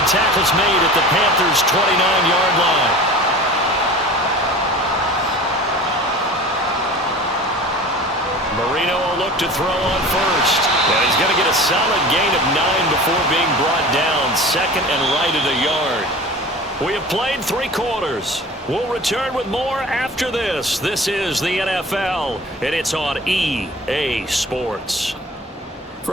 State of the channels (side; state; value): both; normal; correlation 0.39